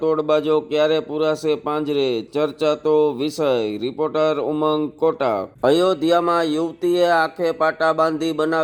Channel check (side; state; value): both; identical; correlation 1.00